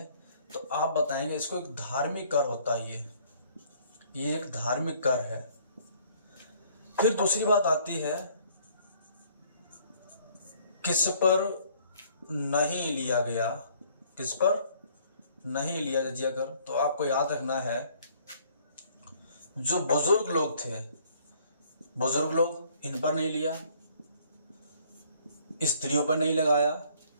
तो आप बताएंगे इसको एक धार्मिक कर होता है। ये एक धार्मिक कर है। फिर दूसरी बात आती है, किस पर नहीं लिया गया, किस पर नहीं लिया जजिया कर, तो आपको याद रखना है जो बुजुर्ग लोग थे, बुजुर्ग लोग, इन पर नहीं लिया, स्त्रियों पर नहीं लगाया,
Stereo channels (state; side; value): inverted; both; correlation -0.60